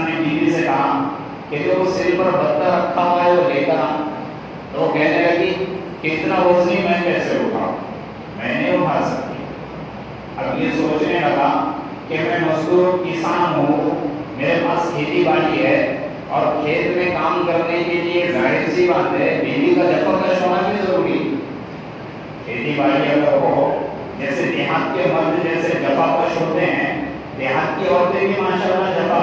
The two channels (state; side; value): identical; both; correlation 1.00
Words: نے بیوی سے کہا کہ جو سر پر بتا رکھا ہوا ہے وہ لے کر آ۔ تو وہ کہنے لگی کہ اتنا وزنی میں کیسے اٹھاؤں، میں نہیں اٹھا سکتی۔ اب یہ سوچنے لگا کہ میں مزدور کسان ہوں، میرے پاس کھیتی باڑی ہے، اور کھیت میں کام کرنے کے لیے ظاہر سی بات ہے بیوی کا جفاکش ہونا بھی ضروری ہے۔ کھیتی باڑی اگر ہو، جیسے دیہات کے مرد جیسے جفاکش ہوتے ہیں، دیہات کی عورتیں بھی ماشاءاللہ